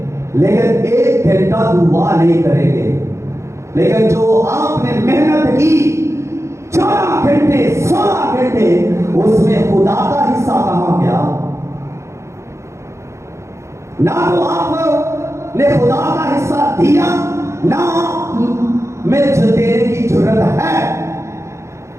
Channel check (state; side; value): late; left; 0.14 ms